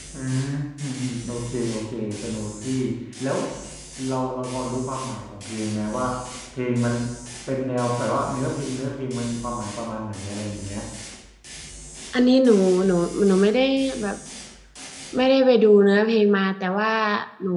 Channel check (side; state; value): both; identical; correlation 1.00